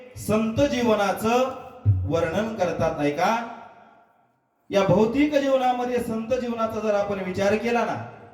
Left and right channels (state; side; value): identical; both; correlation 1.00